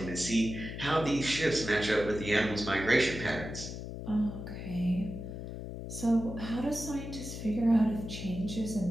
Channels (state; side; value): noise; left; hum, 8 dB below the sound